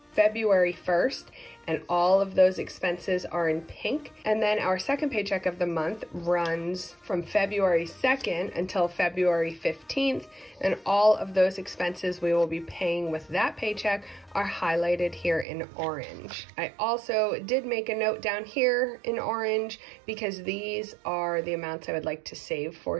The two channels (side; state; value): left; drops out; at 15.5 s